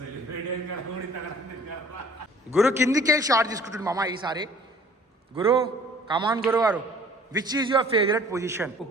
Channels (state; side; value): normal; both; correlation 0.52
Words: గురు కిందికి షార్ట్ తీసుకుంటుంది మామ ఈసారి. గురు కమాన్ గురువు గారు, which is your favourite position?